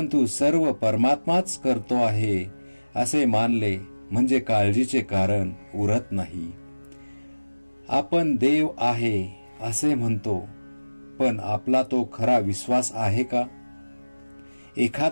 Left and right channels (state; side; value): inverted; both; correlation -1.00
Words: सर्व परमात्माच करतो आहे असे मानले म्हणजे काळजीचे कारण उरत नाही. आपण देव आहे असे म्हणतो, पण आपला तो खरा विश्वास आहे का?